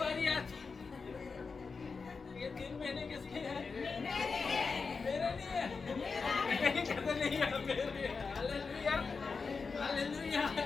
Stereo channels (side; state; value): right; quieter; 4.8 dB